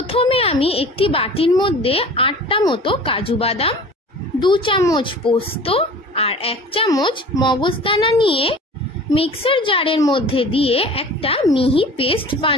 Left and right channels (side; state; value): both; normal; correlation 0.42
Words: আমি একটি বাটির মধ্যে 8টা মতো কাজু বাদাম, 2 চামচ পোস্ত আর 1 চামচ মগজদানা নিয়ে মিক্সার জারের মধ্যে দিয়ে একটা মিহি পেস্ট